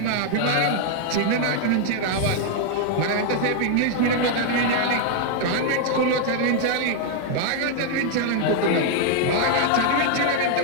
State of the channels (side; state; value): both; different; correlation 0.00